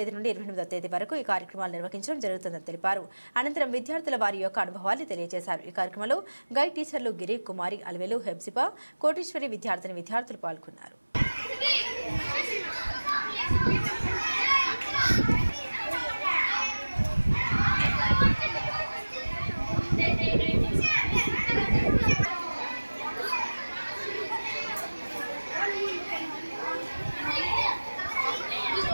నుండి 28వ తేదీ వరకు ఈ కార్యక్రమాలు నిర్వహించడం జరుగుతుందని తెలిపారు. అనంతరం విద్యార్థుల వారి యొక్క అనుభవాన్ని తెలియజేశారు. ఈ కార్యక్రమంలో గైడ్ టీచర్లు గిరి, కుమారి, అలవేలు, హెబ్సిపా, కోటీశ్వరి విద్యార్థులు పాల్గొన్నారు.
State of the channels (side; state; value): both; inverted; correlation -1.00